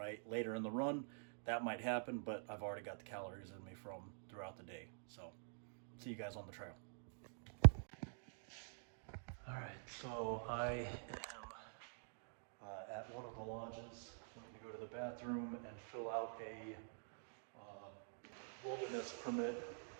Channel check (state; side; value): silent; left; digital silence